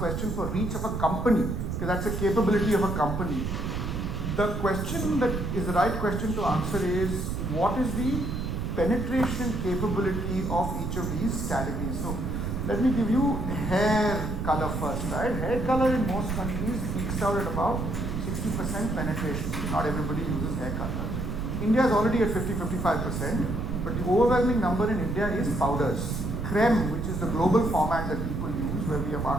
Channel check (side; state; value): right; noise; rumble, 3 dB below the sound